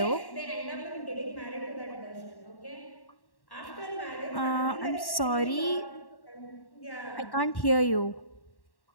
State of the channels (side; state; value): right; late; 1.1 ms